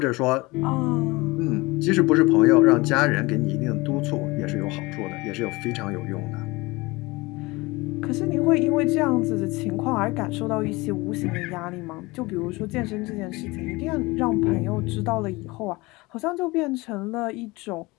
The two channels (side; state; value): right; quieter; 22.9 dB